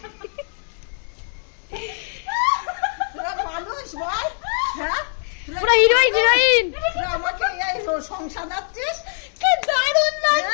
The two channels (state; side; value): silent; right; 64 dB below the other